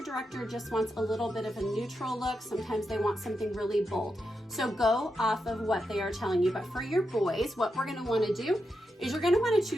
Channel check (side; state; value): both; normal; correlation 0.86